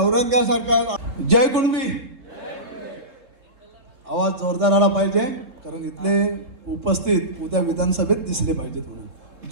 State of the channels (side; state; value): left; late; 3.7 ms